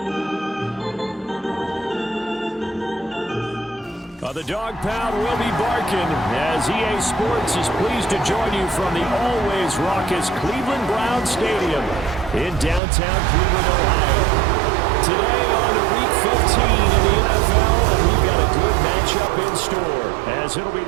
The DAWG Pound will be barking as EA Sports is pleased to join you from the always raucous Cleveland Browns Stadium in downtown Cleveland, Ohio. Today on Week 15 in the NFL, we've got a good matchup in store as it'll be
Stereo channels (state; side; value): drops out; left; at 12.8 s